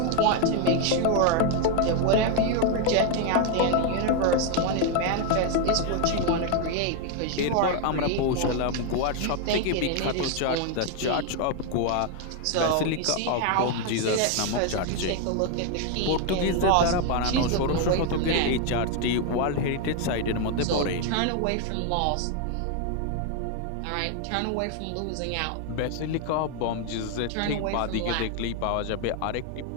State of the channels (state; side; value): different; both; correlation 0.01